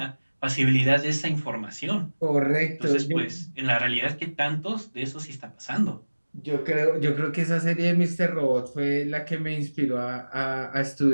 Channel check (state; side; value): inverted; both; correlation -1.00